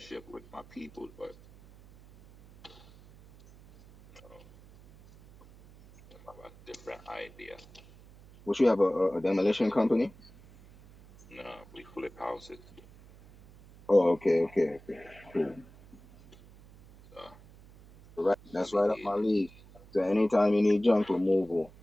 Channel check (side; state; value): right; noise; hum, 23 dB below the sound